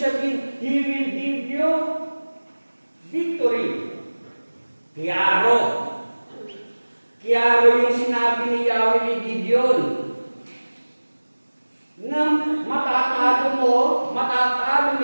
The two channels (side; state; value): both; inverted; correlation -1.00